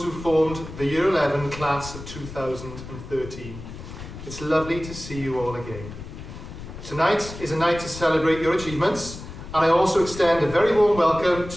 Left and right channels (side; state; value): left; noise; rumble, 12 dB below the sound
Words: who formed the Year 11 class of 2013. It's lovely to see you all again. Tonight is a night to celebrate your achievements, and I also extend a very warm welcome